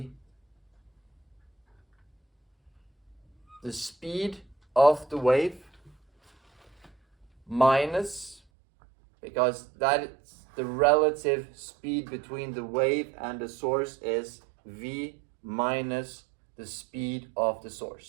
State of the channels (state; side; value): drops out; left; at 8.4 s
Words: the speed of the wave minus, because that is the relative speed between the wave and the source is v minus the speed of the